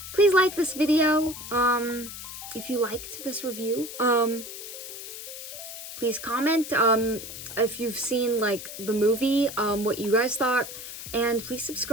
please like this video if you liked this review. Please comment if you've seen like the movie, what you guys thought, and please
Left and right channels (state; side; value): noise; left; hiss, 10 dB below the sound